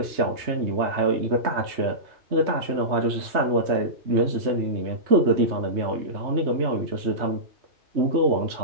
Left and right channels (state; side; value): late; left; 3.2 ms